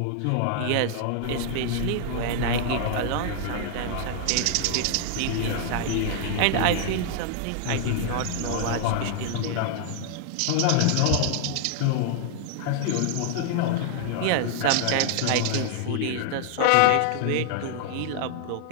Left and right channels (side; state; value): both; different; correlation 0.00